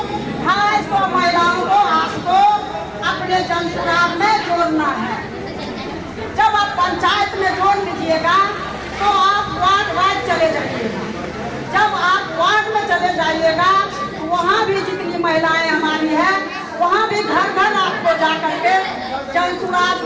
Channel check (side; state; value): both; identical; correlation 1.00